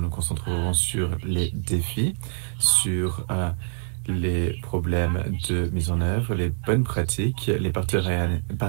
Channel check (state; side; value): silent; left; 62 dB below the other